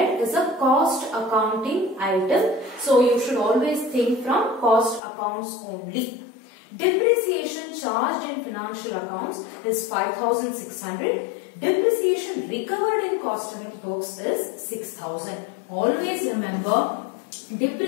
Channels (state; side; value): drops out; right; at 5.0 s